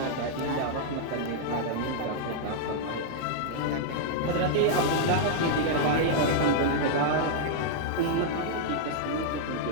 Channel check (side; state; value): both; different; correlation -0.01